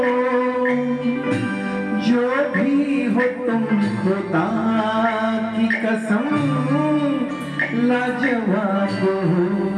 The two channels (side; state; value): both; identical; correlation 1.00